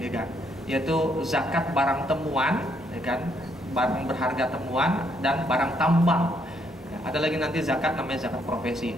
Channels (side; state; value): both; normal; correlation 0.72